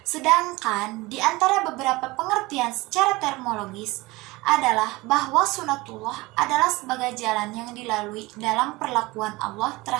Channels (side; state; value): left; quieter; 21.8 dB